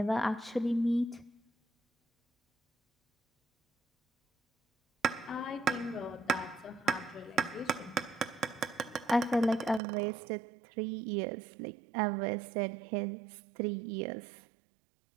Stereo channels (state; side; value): drops out; left; at 9.8 s